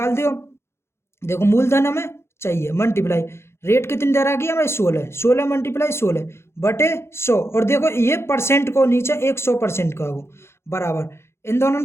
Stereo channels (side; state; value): right; late; 0.12 ms